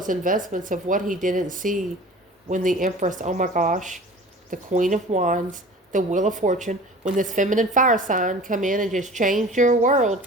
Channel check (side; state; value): both; normal; correlation 0.42